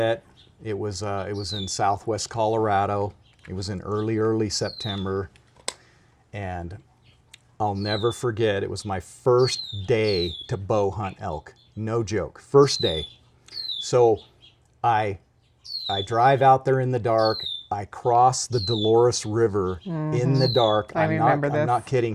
it was in Southwest Colorado. It was in early September. And I'll never forget, it was my first day to bow hunt elk. No joke, first day. So I drive out there in the dark. I cross the Dolores River in the dark. I'm not kidding,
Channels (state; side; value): identical; both; correlation 1.00